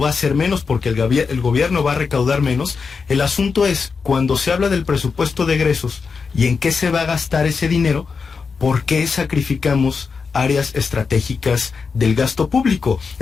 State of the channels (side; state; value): right; quieter; 5.2 dB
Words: a ser menos porque el gobierno va a recaudar menos. El asunto es, cuando se habla del presupuesto de egresos y en qué se va a gastar ese dinero, ¿por qué sacrificamos áreas estratégicas del gasto público?